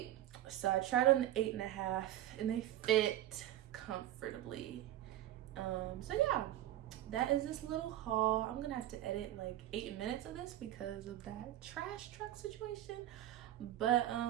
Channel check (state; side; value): quieter; left; 13.2 dB